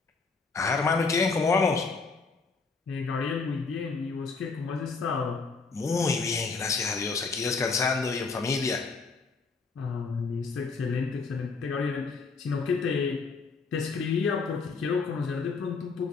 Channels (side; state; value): right; quieter; 4.5 dB